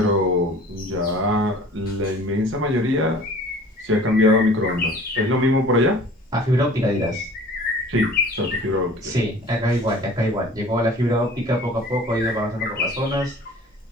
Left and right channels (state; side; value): normal; both; correlation 0.46